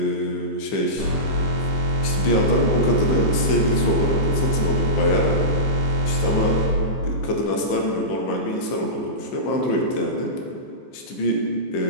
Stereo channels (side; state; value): right; late; 15 ms